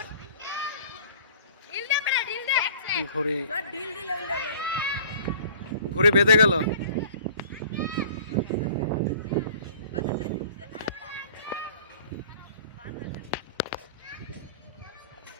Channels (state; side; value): inverted; both; correlation -0.47